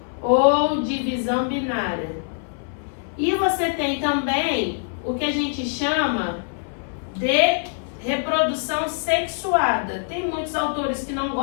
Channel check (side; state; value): right; silent; 56 dB below the other